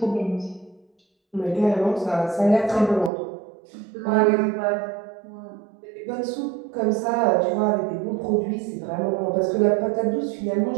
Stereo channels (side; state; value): left; drops out; at 3.1 s